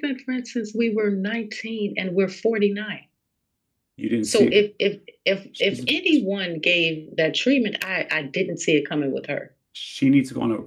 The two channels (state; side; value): identical; both; correlation 1.00